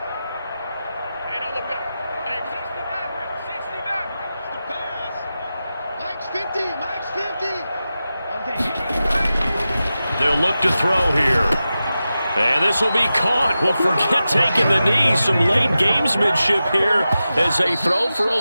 They'll look to throw here. And this will be caught. Well, forget taking the knee. Some late gamesmanship here as they throw for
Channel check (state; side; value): inverted; both; correlation -0.93